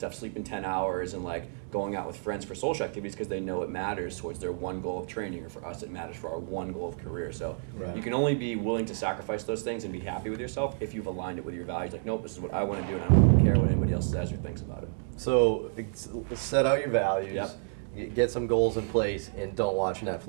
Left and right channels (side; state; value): left; silent; digital silence